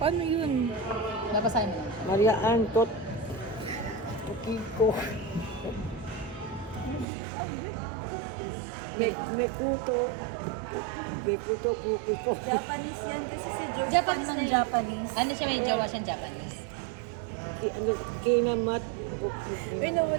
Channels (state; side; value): drops out; left; at 7.1 s